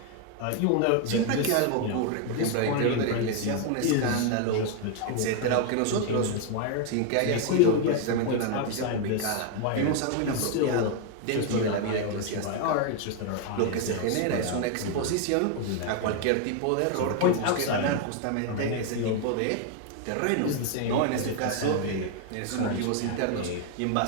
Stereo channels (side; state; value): both; different; correlation 0.01